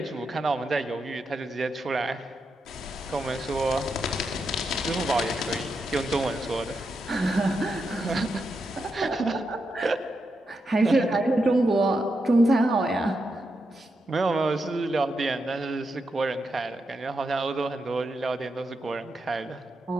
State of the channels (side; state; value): both; normal; correlation 0.85